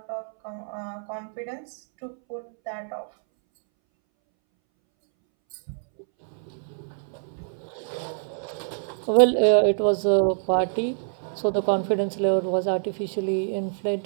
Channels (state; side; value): silent; left; 61 dB below the other